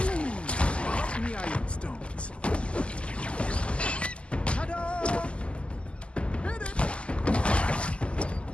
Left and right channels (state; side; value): late; right; 0.054 ms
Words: Right in the iron stones. Ta-da! Hit it!